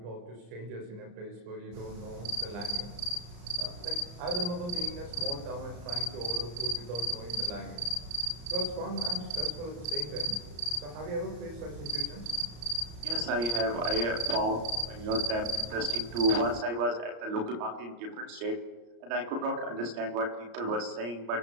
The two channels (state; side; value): late; left; 34 ms